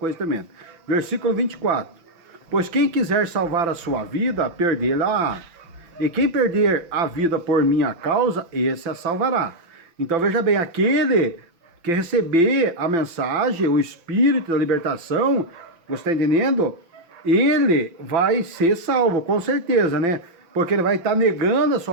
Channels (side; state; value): left; late; 6.0 ms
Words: tremenda. Versículo 24. Pois quem quiser salvar a sua vida, perdê-la-á. E quem perder a vida por minha causa, esse a salvará. Então, veja bem, aquele que receber a mensagem, o Espírito da libertação, você está entendendo? Ele vai ser salvo, com certeza, né? Porque ele vai estar negando a